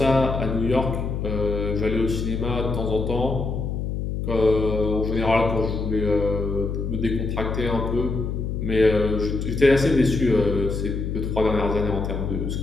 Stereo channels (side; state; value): left; noise; hum, 3 dB below the sound